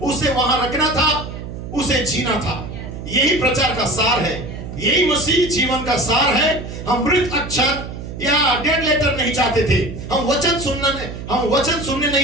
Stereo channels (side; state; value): right; noise; hum, 9 dB below the sound